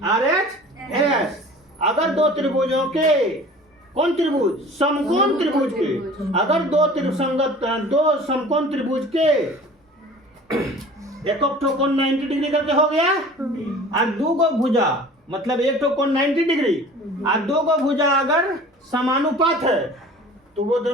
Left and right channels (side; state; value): both; normal; correlation 0.44